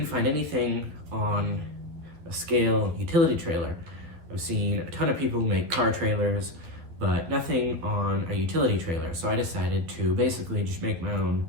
find anything on a scale utility trailer. I've seen a ton of people make car trailers, but nothing on a utility trailer, so I decided to basically just make my own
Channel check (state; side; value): late; left; 12 ms